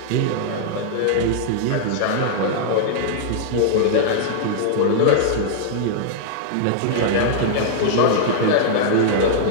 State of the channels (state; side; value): different; both; correlation -0.01